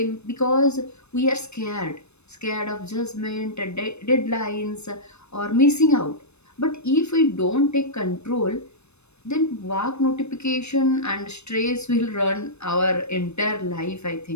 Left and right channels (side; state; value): right; late; 0.81 ms